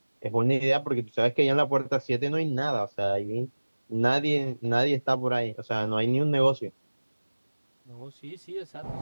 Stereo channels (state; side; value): inverted; both; correlation -1.00